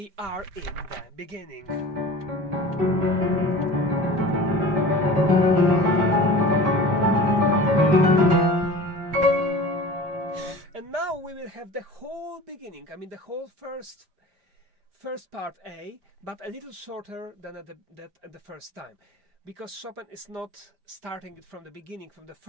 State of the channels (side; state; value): left; late; 4.9 ms